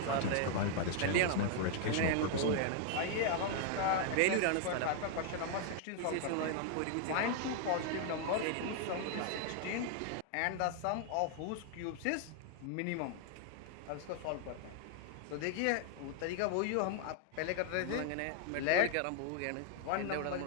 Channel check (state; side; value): different; both; correlation 0.00